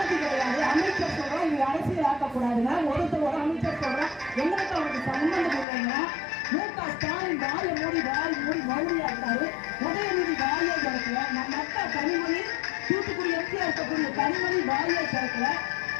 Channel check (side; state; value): right; drops out; at 5.7 s